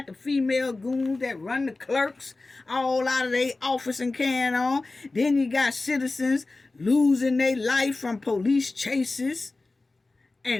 the female goons that run the clerks all out of their office and carrying on. Then you got citizens losing their life from police chases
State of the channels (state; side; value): quieter; right; 3.3 dB